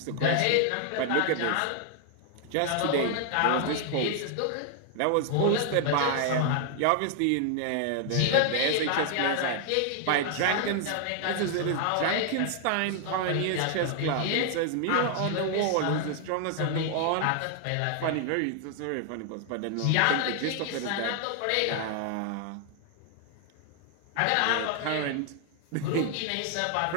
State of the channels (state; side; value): different; both; correlation 0.00